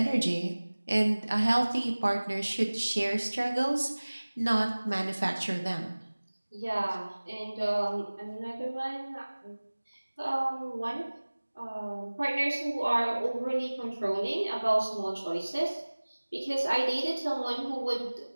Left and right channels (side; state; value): both; inverted; correlation -1.00